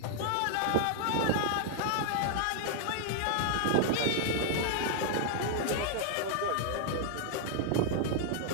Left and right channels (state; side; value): different; both; correlation -0.01